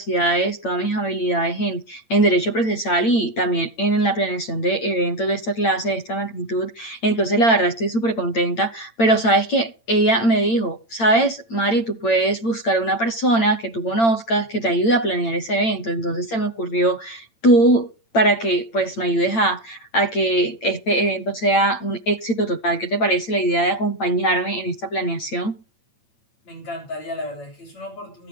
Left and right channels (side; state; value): right; late; 8.8 ms